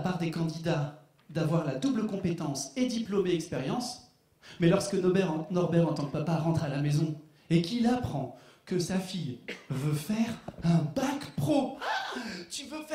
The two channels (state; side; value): identical; both; correlation 1.00